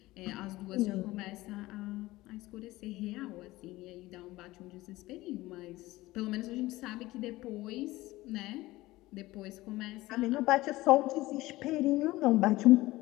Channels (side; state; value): right; quieter; 18.4 dB